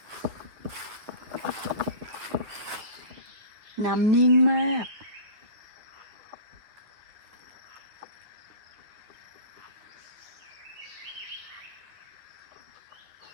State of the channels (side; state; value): left; late; 9.2 ms